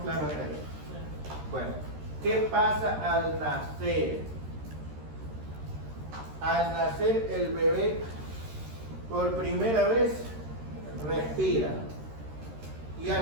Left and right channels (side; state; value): left; late; 13 ms